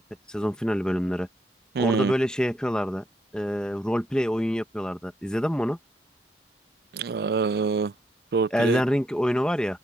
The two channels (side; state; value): both; normal; correlation 0.76